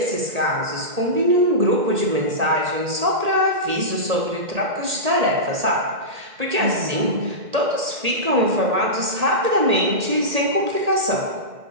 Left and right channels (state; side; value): late; left; 1.8 ms